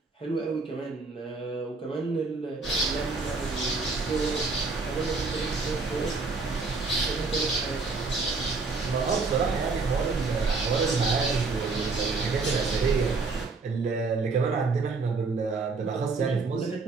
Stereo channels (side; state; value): left; quieter; 4.1 dB